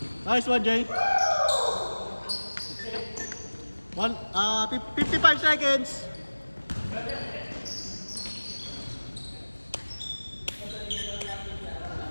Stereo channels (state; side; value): inverted; both; correlation -1.00